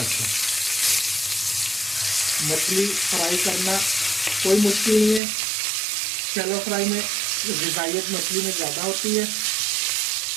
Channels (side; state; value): left; drops out; at 5.2 s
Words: मछली फ्राई करना कोई मुश्किल नहीं है। शैलो फ्राई में ग़िज़ाइयत मछली में ज़्यादा होती है।